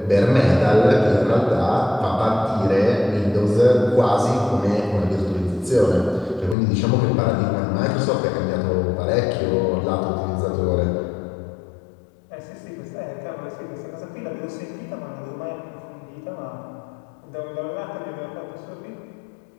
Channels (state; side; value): drops out; right; at 6.6 s